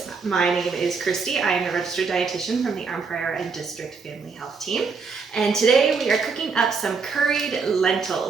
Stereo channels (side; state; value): left; quieter; 5.0 dB